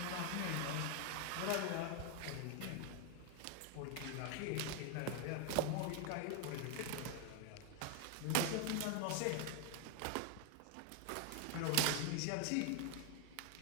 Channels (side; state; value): both; different; correlation 0.01